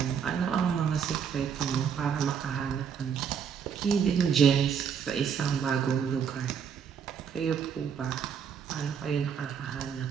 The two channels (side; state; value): left; quieter; 7.4 dB